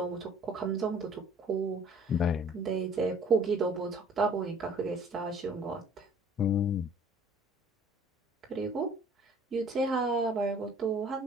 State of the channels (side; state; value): both; normal; correlation 0.53